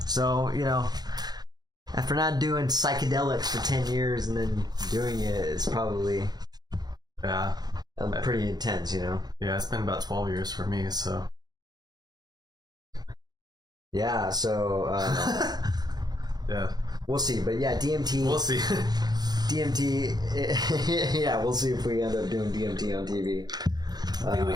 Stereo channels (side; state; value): left; late; 0.19 ms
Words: So, after not doing psychedelics for 10 years and then doing it, it's probably pretty intense, Yeah, it's been about 12 years for me, so. Yeah, so yeah. We'll see. But yeah, DMT. We'll see. DMT. Yeah, we'll see if we end up doing DMT on TV.